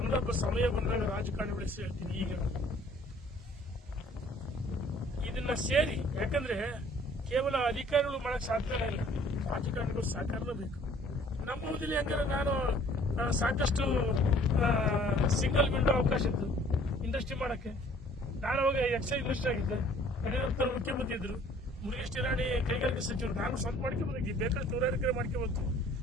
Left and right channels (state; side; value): normal; both; correlation 0.56